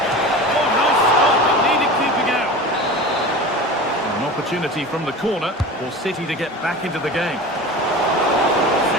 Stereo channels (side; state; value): both; normal; correlation 0.33